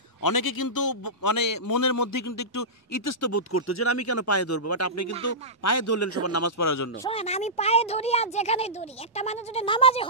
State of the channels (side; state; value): both; normal; correlation -0.16